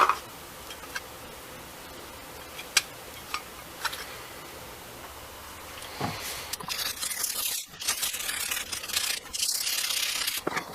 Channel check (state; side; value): identical; both; correlation 1.00